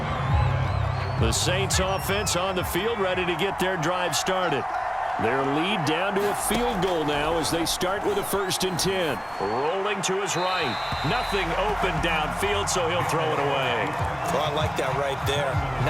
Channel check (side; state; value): both; identical; correlation 1.00